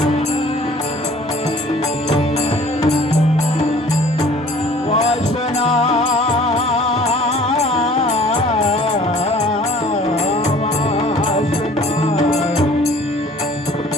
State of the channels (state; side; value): normal; both; correlation 0.51